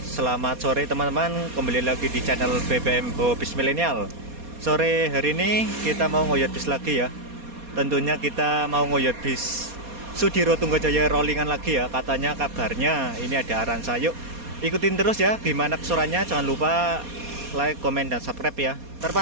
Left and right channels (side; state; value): left; late; 4.2 ms